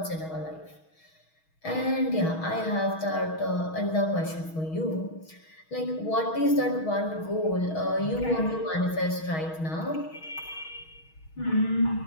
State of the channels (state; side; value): late; right; 6.3 ms